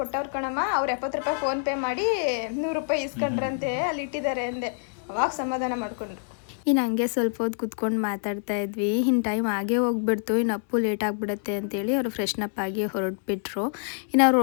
ಕೊಟ್ಟವ್ರ ಕಣಮ್ಮ. ಅವ್ರು 70 ರೂಪಾಯಿ ಫೋನ್ ಪೇ ಮಾಡಿ 100 ರೂಪಾಯಿ ಇಸ್ಕೊಂಡ್ರಂತೆ ಅಲ್ಲಿ ಇಟ್ಟಿದ್ದಾರೆ ಅಂದೆ. ಅವಾಗ ಸಮಾಧಾನ ಮಾಡ್ಕೊಂಡ್ರು. ಇನ್ನು ಹಂಗೆ ಸ್ವಲ್ಪ ಹೊತ್ತು ಕುತ್ಕೊಂಡು ಮಾತಾಡ್ತಾ ಇದ್ವಿ. ಇನ್ನು ಟೈಮ್ ಆಗೇ ಹೋಗ್ಬಿಡ್ತು, ಇನ್ನು ಅಪ್ಪು ಲೇಟ್ ಆಗಿಬಿಡುತ್ತೆ ಅಂತೇಳಿ ಅವರು ಫ್ರೆಶ್ನಪ್ ಆಗಿ ಹೊರಟ್ಬಿಟ್ರು. ಇನ್ನು ಅವ್ರು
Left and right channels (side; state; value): right; silent; digital silence